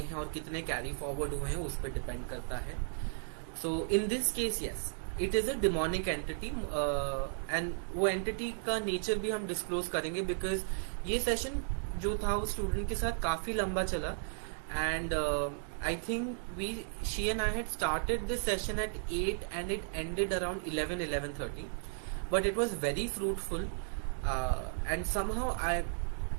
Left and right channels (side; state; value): left; silent; digital silence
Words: हैं और कितने कैरी फॉरवर्ड हुए हैं उस पर डिपेंड करता है. So in this case yes, it is a demonic entity. And वो एंटिटी का नेचर भी हम डिस्क्लोज करेंगे, बिकॉज ये सेशन जो था वो स्टूडेंट के साथ काफी लंबा चला. And I think she and I had started this session at 8 and it ended around 11:30, but it was very fruitful. And somehow